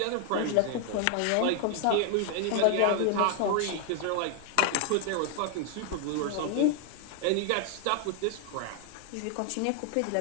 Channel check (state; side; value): different; both; correlation 0.00